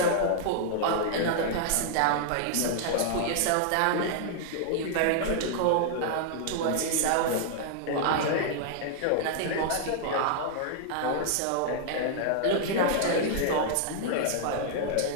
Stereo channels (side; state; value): both; different; correlation -0.01